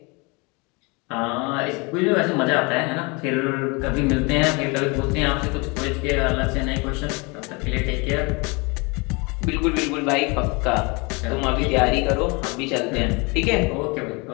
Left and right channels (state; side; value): quieter; right; 28.5 dB